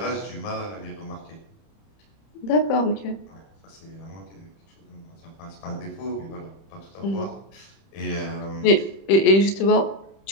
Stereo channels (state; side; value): late; right; 31 ms